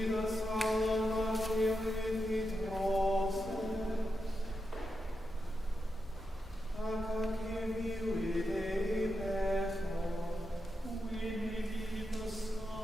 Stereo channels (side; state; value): both; normal; correlation 0.87